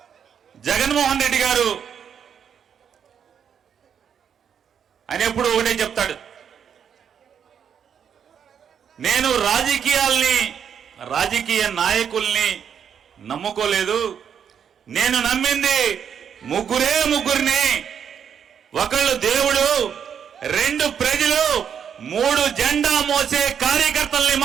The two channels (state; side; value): quieter; left; 7.9 dB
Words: జగన్మోహన్ రెడ్డి గారు ఆయన ఎప్పుడు ఒకటే చెప్తాడు, నేను రాజకీయ నాయకుల్ని నమ్ముకోలేదు, నేను నమ్మింది ముగ్గురిని, ఒకళ్ళు దేవుడు, 2 ప్రజలు, 3 జెండా మోసే కార్యకర్తల్ని